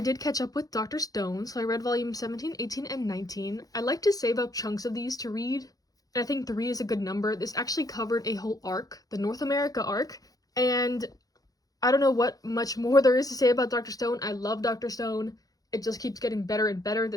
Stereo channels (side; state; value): right; late; 0.18 ms